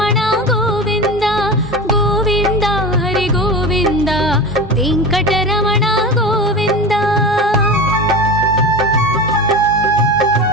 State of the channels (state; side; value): normal; both; correlation 0.28